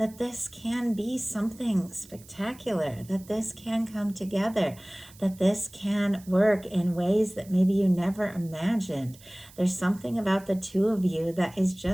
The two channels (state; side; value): noise; right; hiss, 23 dB below the sound